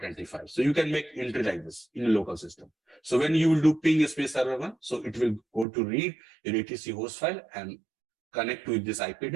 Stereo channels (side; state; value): left; drops out; at 5.7 s